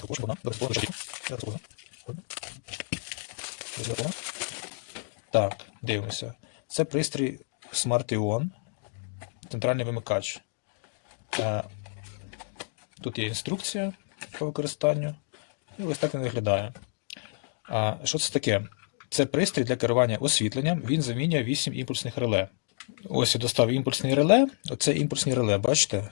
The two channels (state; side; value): silent; right; 58 dB below the other